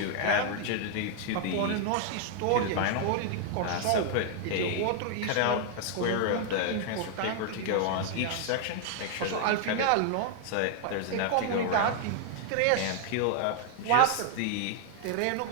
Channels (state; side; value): different; both; correlation 0.00